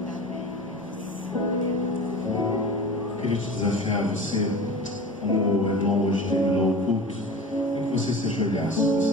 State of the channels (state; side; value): normal; both; correlation 0.35